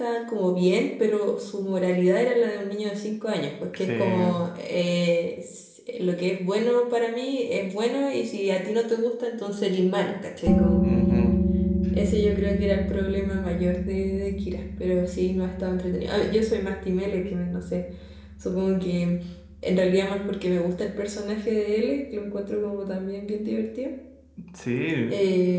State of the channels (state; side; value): identical; both; correlation 1.00